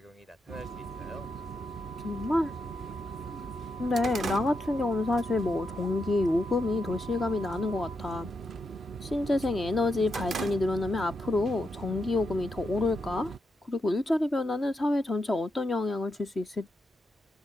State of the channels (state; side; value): normal; both; correlation 0.84